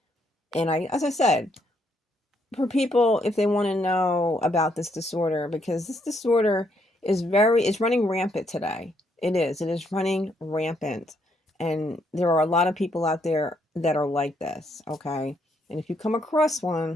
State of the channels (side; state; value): both; normal; correlation 0.73